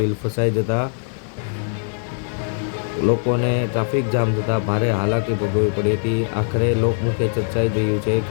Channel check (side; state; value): right; silent; digital silence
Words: ફસાઈ જતાં લોકોને ટ્રાફિક જામ થતાં ભારે હાલાકી ભોગવવી પડી હતી। આખરે લોકમુખે ચર્ચાઈ રહ્યું છે